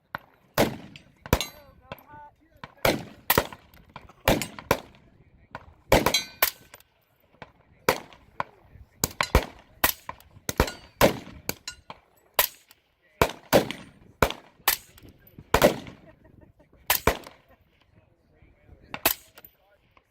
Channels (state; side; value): identical; both; correlation 1.00